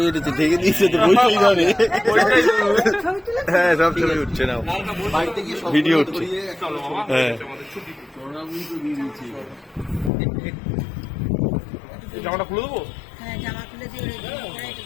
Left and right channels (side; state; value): right; drops out; at 10.1 s